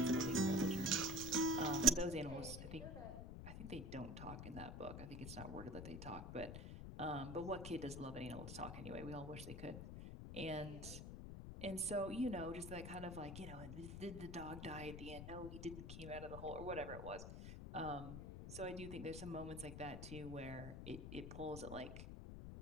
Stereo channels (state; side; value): noise; left; rumble, 7 dB below the sound